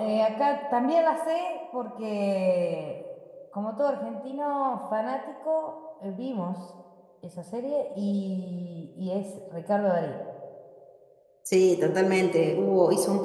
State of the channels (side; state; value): both; identical; correlation 1.00